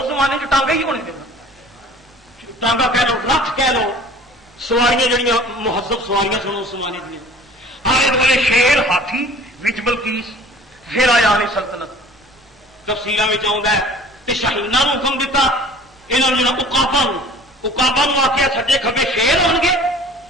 زمانے چ ٹانگا ہی ہونے دینا, ٹانگا کہہ لو, رتھ کہہ لو, سواریاں جڑیاں مہذب سواریاں سن اس زمانے دیا. آلے دوالے شیر ہاتھی وچ بلقیس. پھر آیا علی سلطنت. تفصیلاں وچ آوندا ہے تے شاہیناں نوں حکم دیتا, انہاں نوں عقاباں نوں آکھیا سجے کھبے شیر ہون گے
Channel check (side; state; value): both; normal; correlation 0.47